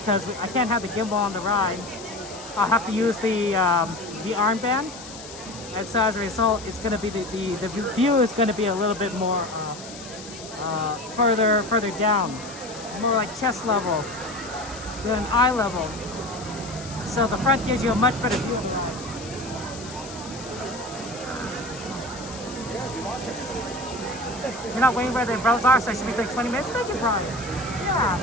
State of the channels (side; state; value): left; noise; hiss, 14 dB below the sound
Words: I can't have the gimbal on the ride. I'll have to use the armband, and so as a result, it's going to be the view is going to be a little bit more further down, more like chest level than eye level. So the front gives you a much better view of the ride. You're not waiting where the umbrellas are, so I should be doing 20 minutes. Thank you, Brian. Yeah.